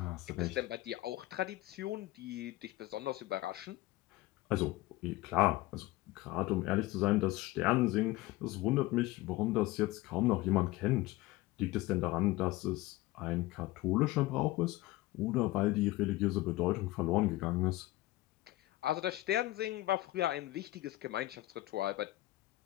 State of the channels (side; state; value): right; quieter; 18.2 dB